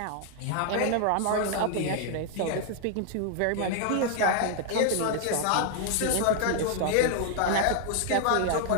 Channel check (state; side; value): different; both; correlation 0.00